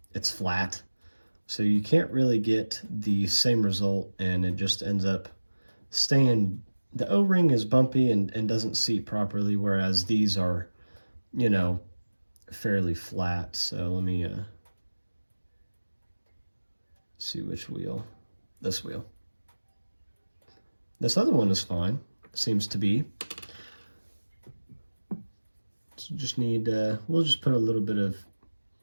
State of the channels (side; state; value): both; inverted; correlation -1.00